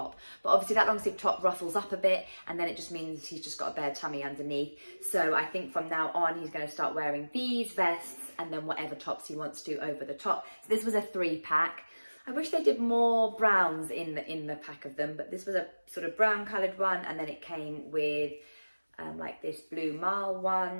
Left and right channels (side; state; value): both; inverted; correlation -1.00